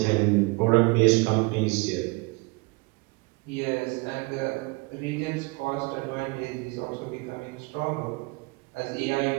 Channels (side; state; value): left; quieter; 26.8 dB